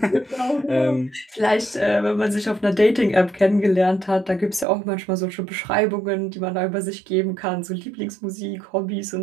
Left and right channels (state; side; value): drops out; left; at 4.7 s